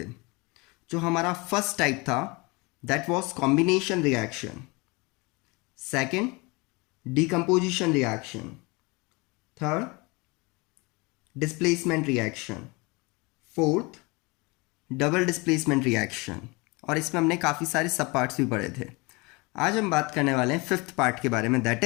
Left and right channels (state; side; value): quieter; right; 26.6 dB